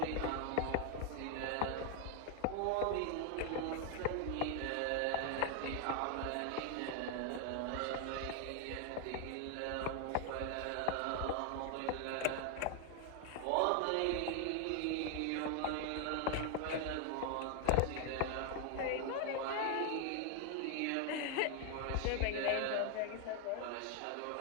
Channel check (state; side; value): different; both; correlation 0.00